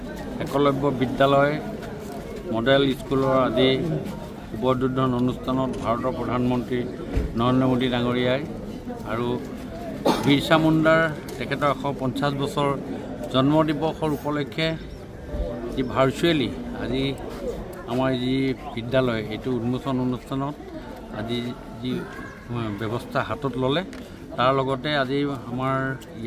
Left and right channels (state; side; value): identical; both; correlation 1.00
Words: একলব্য বিদ্যালয় মডেল স্কুলৰ আজি উদ্বোধন অনুষ্ঠানত ভাৰতৰ প্ৰধানমন্ত্ৰী নৰেন্দ্ৰ মোদী ডাঙৰীয়াই আৰু বিৰছা মুণ্ডাৰ তেখেতৰ 150 বছৰ জন্ম দিৱসৰ উপলক্ষে যি ভাৰ্চুৱেলি আজি আমাৰ যি বিদ্যালয় এইটো উন্মোচন অনুষ্ঠানত আজি যি ব্যৱস্থা হাতত ল'লে তাৰ লগতে আজি আমাৰ